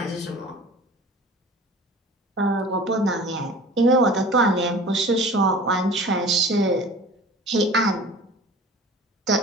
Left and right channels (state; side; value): normal; both; correlation 0.42